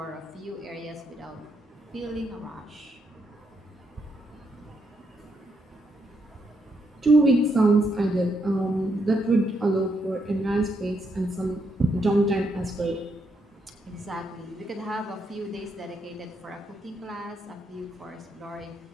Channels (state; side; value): normal; both; correlation 0.78